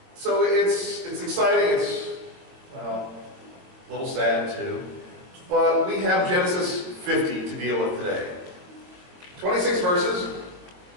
So it's exciting. It's, well, a little sad too. But we have Genesis 50 to deal with today. 26 verses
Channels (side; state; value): left; late; 22 ms